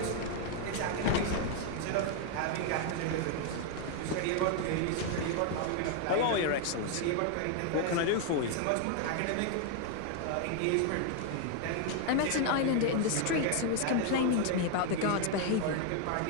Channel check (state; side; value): different; both; correlation 0.01